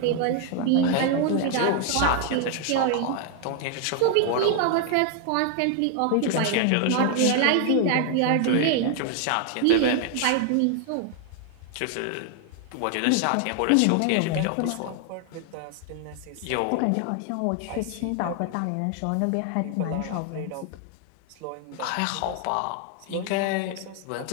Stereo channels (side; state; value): both; different; correlation 0.00